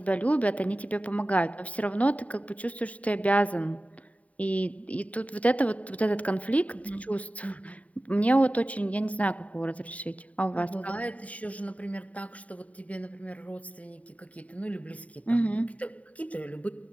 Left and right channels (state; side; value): late; right; 0.068 ms